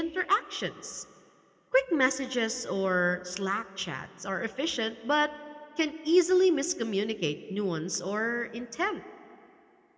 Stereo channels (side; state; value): both; identical; correlation 1.00